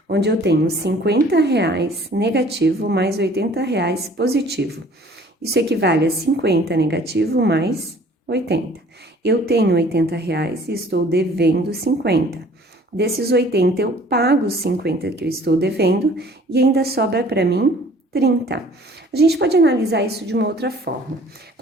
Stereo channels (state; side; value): normal; both; correlation 0.53